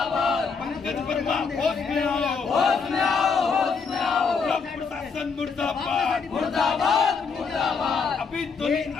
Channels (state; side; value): quieter; right; 5.3 dB